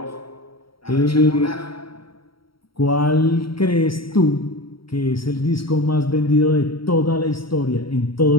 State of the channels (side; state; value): right; late; 0.74 ms